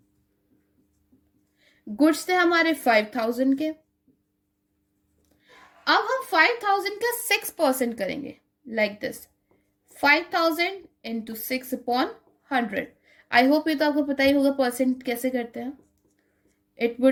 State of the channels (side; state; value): both; identical; correlation 1.00